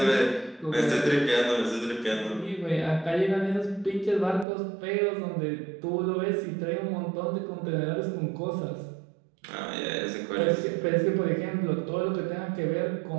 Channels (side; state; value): left; drops out; at 4.5 s